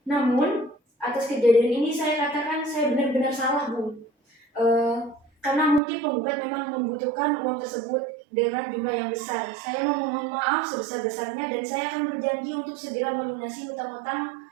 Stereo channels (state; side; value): drops out; left; at 5.8 s